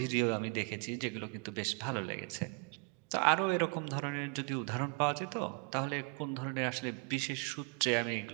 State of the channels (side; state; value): left; quieter; 33.6 dB